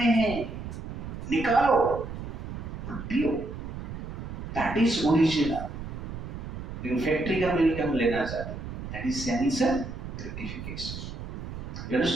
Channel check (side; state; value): right; noise; rumble, 8 dB below the sound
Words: है, निकालो, पियो, दैट इज ओरिजिनल. फैक्ट्री का मिल्क हम लेना चाहते हैं, that is sense gratification. You